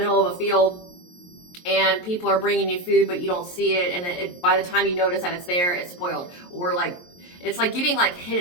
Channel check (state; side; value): late; right; 23 ms